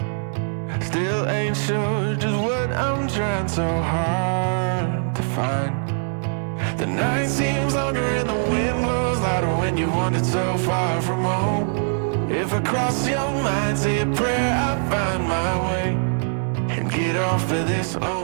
still ain't sure just what I'm trying so hard to find. The night seems longer and the wind blows louder when you wandered so far from home. If I cross your mind, say a prayer, I find my way and get off of this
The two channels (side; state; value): left; silent; 64 dB below the other